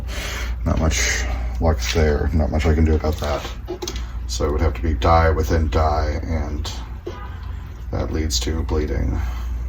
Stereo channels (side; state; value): both; identical; correlation 1.00